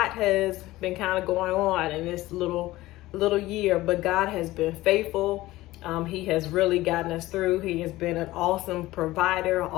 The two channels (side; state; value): right; quieter; 17.5 dB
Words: has been kind of going on in this little year, but God has been faithful. He has really gotten us through. He has been an awesome provider,